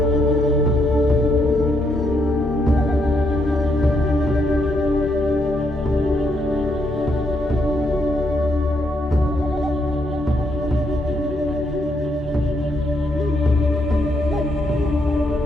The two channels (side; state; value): both; normal; correlation 0.76